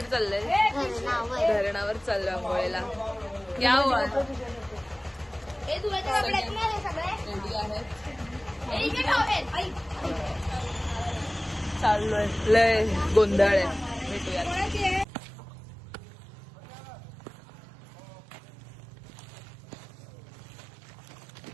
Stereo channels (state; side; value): drops out; left; at 15.1 s